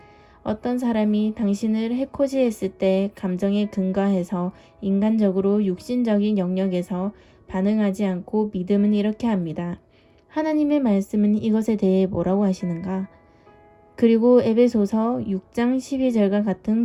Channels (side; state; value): both; identical; correlation 1.00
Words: 어떤 사람이 당신을 해코지했을 때 감정에 근거해서 인간적으로 육신적인 영역에서 반응하지 않고 믿음은 이렇게 합니다. 하나님의 말씀은 이것에 대해 뭐라고 하시는가? 그리고 에베소서 6장 12절과